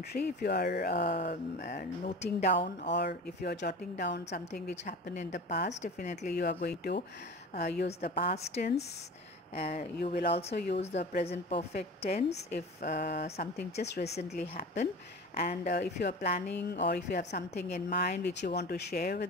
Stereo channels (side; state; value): both; normal; correlation 0.35